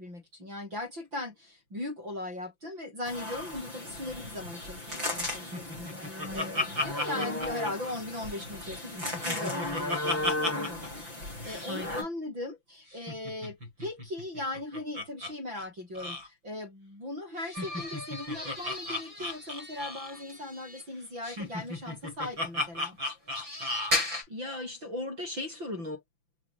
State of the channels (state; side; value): late; left; 5.9 ms